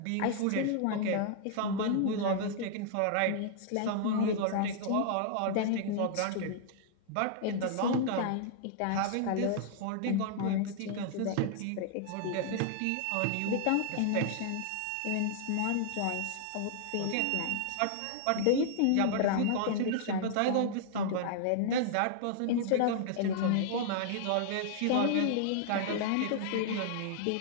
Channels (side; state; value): both; different; correlation -0.01